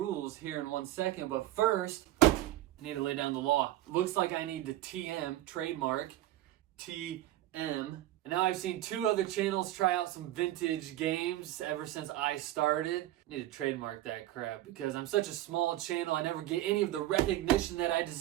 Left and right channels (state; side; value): quieter; left; 14.7 dB